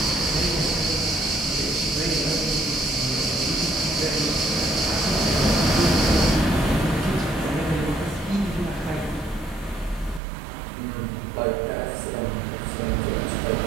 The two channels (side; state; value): left; drops out; at 10.2 s